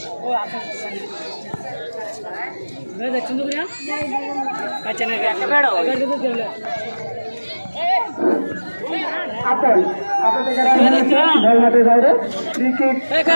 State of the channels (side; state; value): both; inverted; correlation -1.00